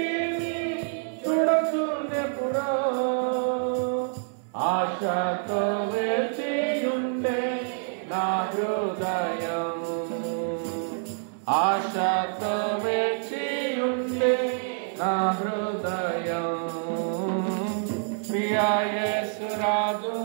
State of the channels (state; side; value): silent; left; 60 dB below the other